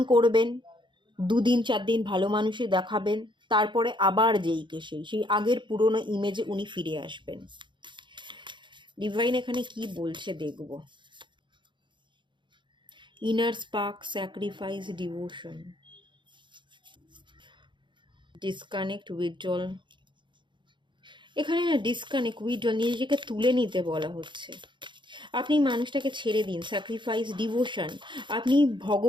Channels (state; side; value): late; left; 0.23 ms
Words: করবেন, 2 দিন 4 দিন ভালো মানুষই দেখাবেন, তারপরে আবার যেইকে সেই আগের পুরনো ইমেজে উনি ফিরে আসবেন। ডিভাইন এখানে কি বলছে দেখব। Inner spark, sacrifice, devotion, disconnect, withdrawal. এখানে না ডিসকানেক্ট, উইথড্রল, নিজেকে তুলে নিতে বলা হচ্ছে। আপনি মানুষটাকে ছেড়ে দিন, স্যাক্রিফাইস, ডিভোশন, আপনি